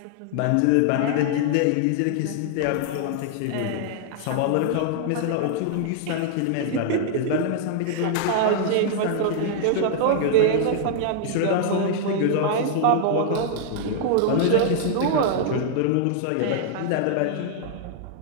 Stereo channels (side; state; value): both; different; correlation -0.01